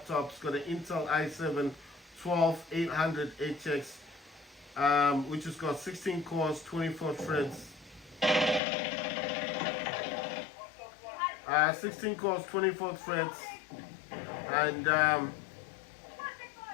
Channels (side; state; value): right; drops out; at 8.6 s